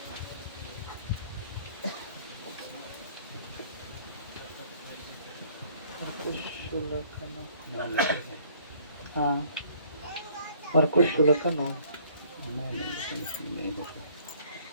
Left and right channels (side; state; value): both; inverted; correlation -0.58